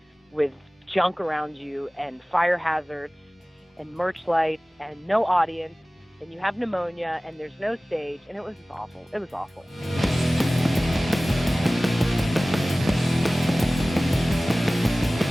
with junk around you and fire hazards and merch lights and no audience, and you have pneumonia and there's no stage, and it was awful. It was awful.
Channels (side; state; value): both; normal; correlation 0.98